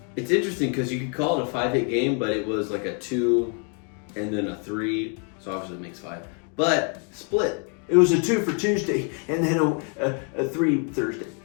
It's interesting because you could call it a 5-hit game, but it was like a 2 and then a 3. So, obviously, it makes 5. But split. It was a 2 for Tuesday and then a 3 Thursday.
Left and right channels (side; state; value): right; quieter; 39.8 dB